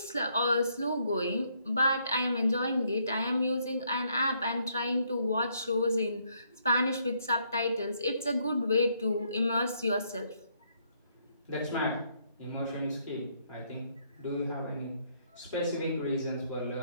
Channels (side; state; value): both; inverted; correlation -0.71